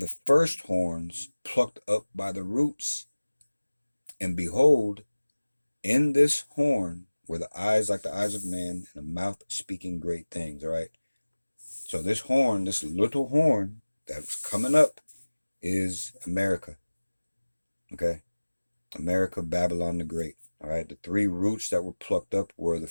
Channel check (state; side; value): inverted; both; correlation -1.00